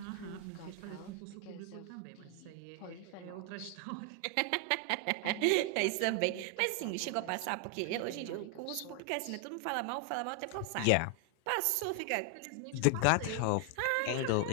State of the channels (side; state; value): both; different; correlation 0.00